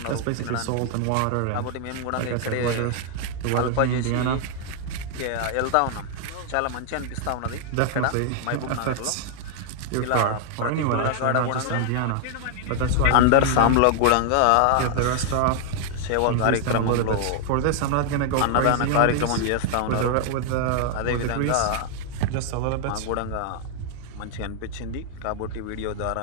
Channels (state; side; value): different; both; correlation 0.00